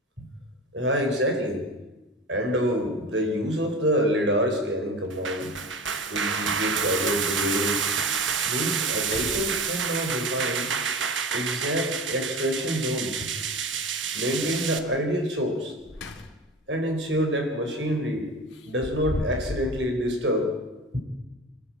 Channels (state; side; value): normal; both; correlation 0.32